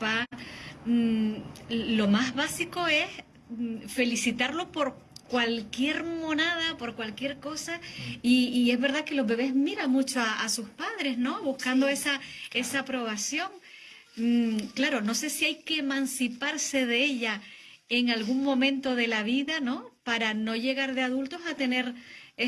Lo más básico es felicitarlo por cualquier monada, por cualquier cosa, y es verdad que los bebés miran mucho a sus padres, ¿no? Buscando esa aprobación. Claro, no sé si hay que emanciparse de ella en algún momento de la vida, ¿no? Para no llegar de adultos a tener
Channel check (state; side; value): identical; both; correlation 1.00